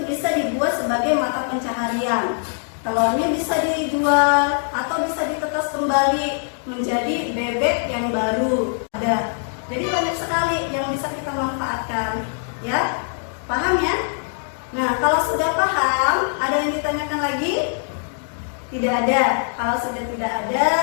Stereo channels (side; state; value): right; silent; 61 dB below the other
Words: bisa dibuat sebagai mata pencaharian. Telurnya bisa dijual atau bisa ditetas kembali menjadi bebek yang baru. Ada. Jadi banyak sekali yang bisa kita manfaatkan. Ya, paham ya? Nah, kalau sudah paham, ada yang ditanyakan lagi? Tidak ada. Kalau sudah tidak ada,